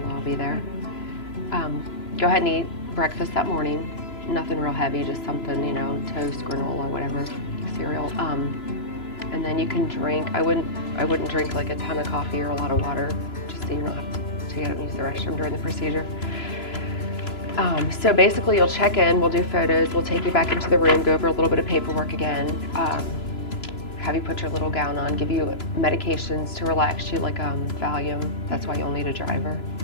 lobby there. Go ahead and eat breakfast that morning. Nothing real heavy, just something, you know, toast, granola, whatever, cereal. And then you can drink. I wouldn't drink like a ton of coffee or a lot of water, just so you don't have to get up and use the restroom during the procedure. So basically you'll check in, we'll do photos, we'll take you back into the room, go over a little bit of paperwork again, have you put your little gown on, give you medications to relax you like Valium, that's why you'll need a driver.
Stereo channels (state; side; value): late; right; 3.0 ms